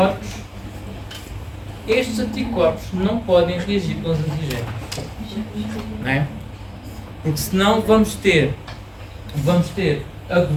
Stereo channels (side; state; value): both; identical; correlation 1.00